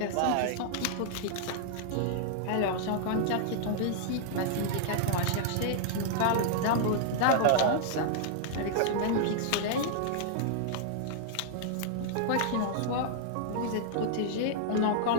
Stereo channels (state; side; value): different; both; correlation -0.01